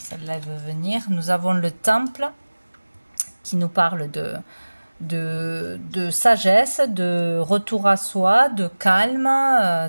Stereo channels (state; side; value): inverted; both; correlation -1.00